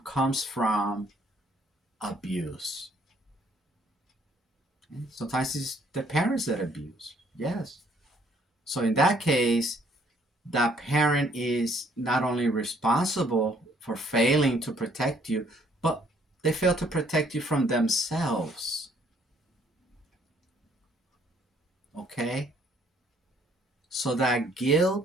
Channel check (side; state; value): both; normal; correlation 0.64